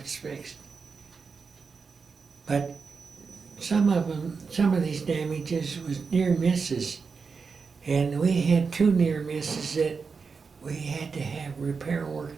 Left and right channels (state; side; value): quieter; left; 5.1 dB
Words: fixed. But some of these damages was near misses, and we had 2 near misses that we had to have repair